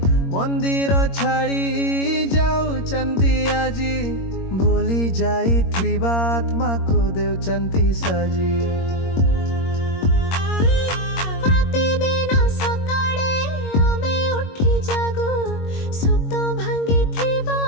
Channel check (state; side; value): late; right; 22 ms